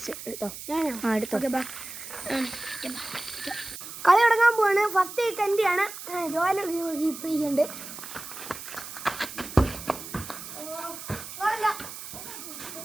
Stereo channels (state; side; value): noise; right; hiss, 11 dB below the sound